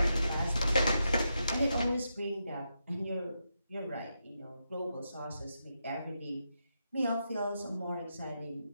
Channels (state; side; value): inverted; both; correlation -0.84